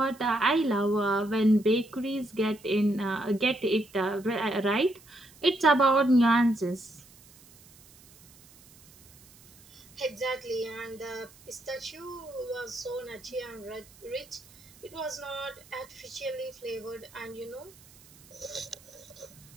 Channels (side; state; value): right; noise; hiss, 24 dB below the sound